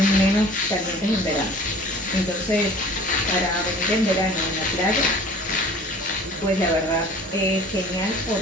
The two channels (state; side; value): normal; both; correlation 0.46